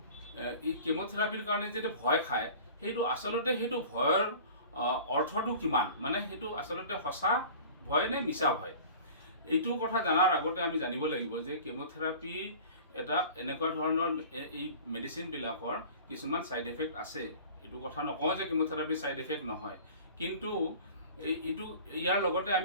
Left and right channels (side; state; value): both; inverted; correlation -0.42